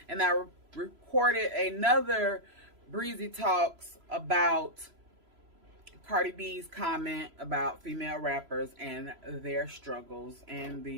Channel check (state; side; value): late; left; 3.0 ms